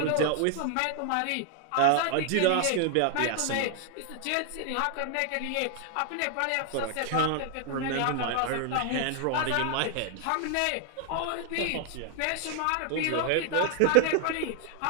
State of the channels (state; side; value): different; both; correlation 0.00